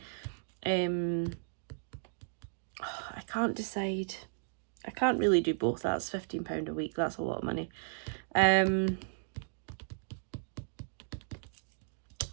I can't decide. I can't really do both. That's £15 a week. That's a lot of money.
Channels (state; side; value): silent; left; digital silence